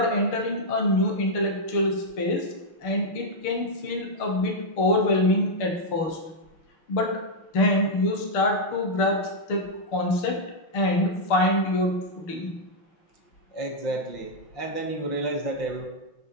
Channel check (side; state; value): right; late; 6.6 ms